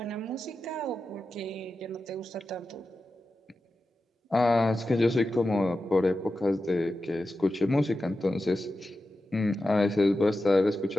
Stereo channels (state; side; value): normal; both; correlation 0.92